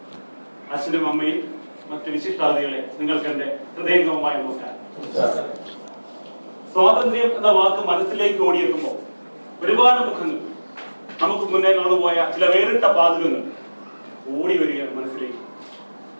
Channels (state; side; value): inverted; both; correlation -1.00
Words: അച്ഛനും അമ്മയും മറ്റു വിശിഷ്ടാതിഥികളെ, നിങ്ങൾക്ക് എന്റെ ഹൃദയംഗമമായ നമസ്കാരം. സ്വാതന്ത്ര്യം എന്ന വാക്ക് മനസ്സിലേക്ക് ഓടിയെത്തുമ്പോൾ ഒരുപാട് മുഖങ്ങൾ, നമുക്ക് മുന്നേ കടന്നുപോയ ചില വേറിട്ട പാതകങ്ങൾ ഓടി വരികയാണ് മനസ്സിലേക്ക്.